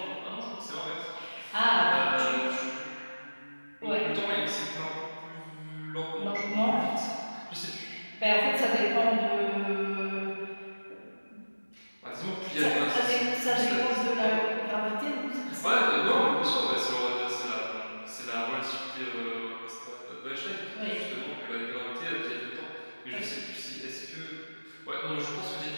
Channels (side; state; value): both; inverted; correlation -1.00